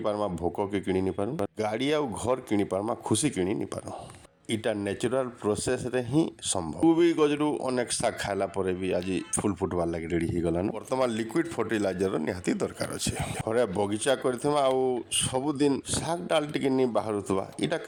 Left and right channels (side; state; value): both; identical; correlation 1.00